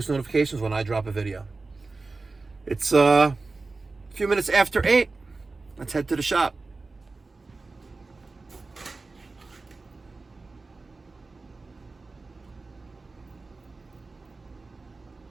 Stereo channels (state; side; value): quieter; left; 3.7 dB